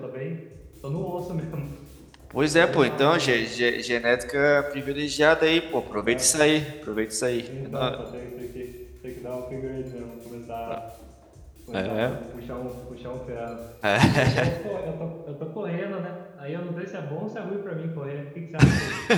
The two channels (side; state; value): both; identical; correlation 1.00